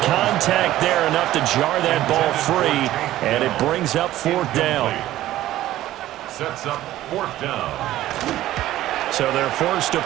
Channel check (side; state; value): left; quieter; 14.4 dB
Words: contact there enough to jar that ball free, and it brings up 4th down. Sets up 4th down. So they're forced to